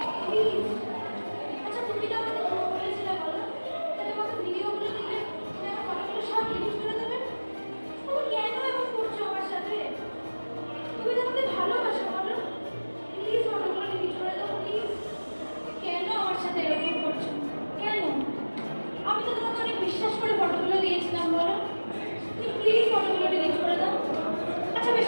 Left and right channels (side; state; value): both; inverted; correlation -1.00